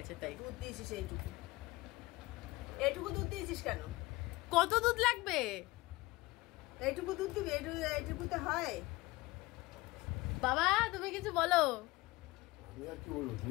তাই দুধ দিয়েছিস এইটুকু। এইটুকু দুধ দিয়েছিস কেন? কত দুধ লাগবে? এইটুকু দুধ দিবি? এইটুকুতে হয়? বাবা তুমি কিছু বলো। আমি আর কি বলবো?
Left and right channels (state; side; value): quieter; right; 20.7 dB